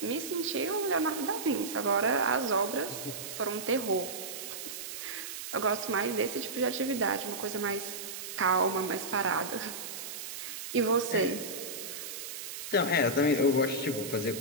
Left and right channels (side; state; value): right; noise; hiss, 8 dB below the sound